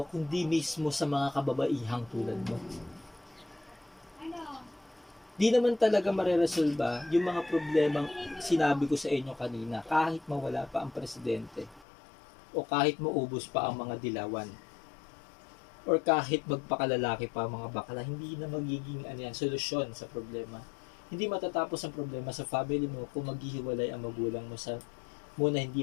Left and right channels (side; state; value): right; drops out; at 11.9 s